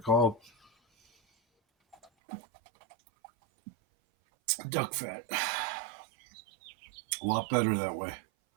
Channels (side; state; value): left; drops out; at 2.1 s